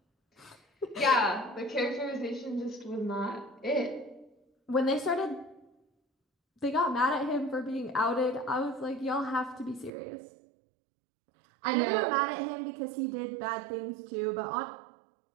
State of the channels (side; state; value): left; drops out; at 9.9 s